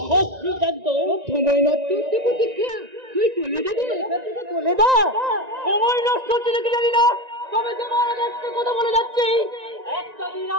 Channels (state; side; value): late; left; 1.9 ms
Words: সব সিদ্ধান্ত। সময় নষ্ট হচ্ছে প্রতীক্ষা, তুই চলে যাবি, চলে যা। সময় নষ্ট হচ্ছে নাকি জানি না, তবে তোমার একটা কথা বলে যাচ্ছি, একটা দিন